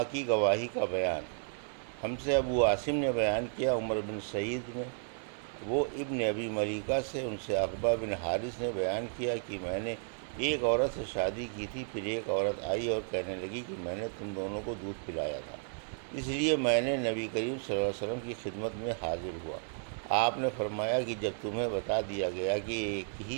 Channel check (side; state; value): left; silent; digital silence